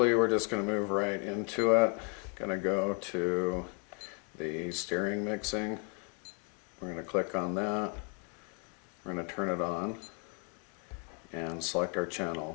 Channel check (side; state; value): right; quieter; 36.3 dB